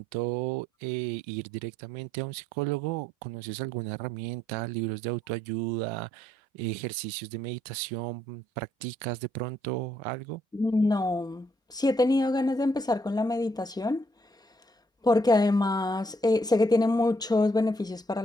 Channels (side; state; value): both; normal; correlation 0.71